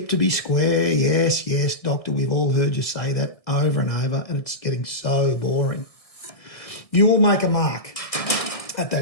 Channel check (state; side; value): late; right; 1.6 ms